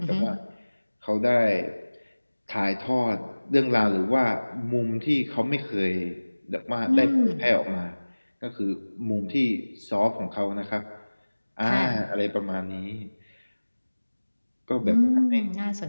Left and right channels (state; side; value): inverted; both; correlation -1.00